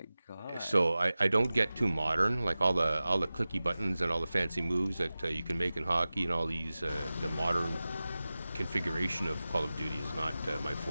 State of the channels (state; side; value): inverted; both; correlation -0.96